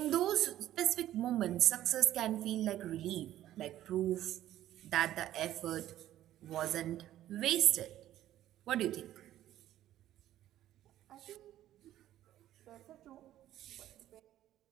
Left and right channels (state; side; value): quieter; left; 13.1 dB